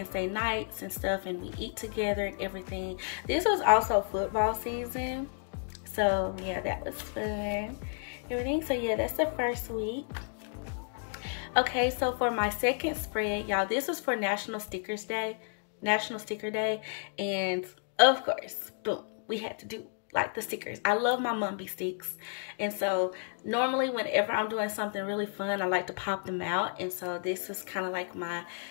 nights and stuff, and we eat together and everything. This was also football season. So yeah, that was fun. Everything. So yeah, that's the first week. Okay, so for my second spread, y'all, this was for National Sticker Day, and of course, boom, we had to do like the stickers. I love my Mumby sticks, and so normally whenever I'm doing something really fun, I like to pop them out, and so this is kind of like my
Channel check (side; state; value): right; silent; 57 dB below the other